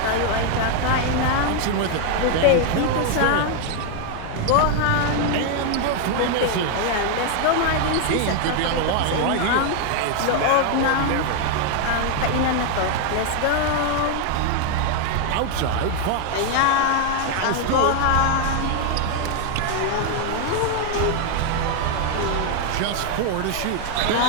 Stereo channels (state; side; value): different; both; correlation 0.01